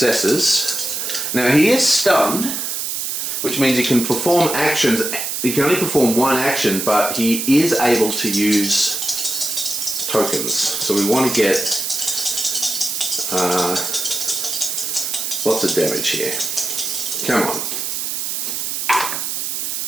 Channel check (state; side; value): noise; right; hiss, 3 dB below the sound